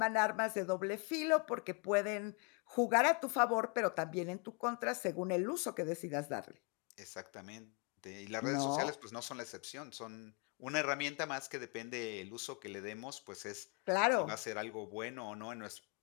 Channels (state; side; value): quieter; right; 32.5 dB